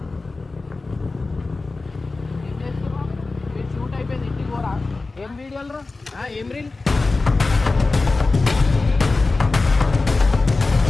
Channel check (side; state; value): right; quieter; 3.6 dB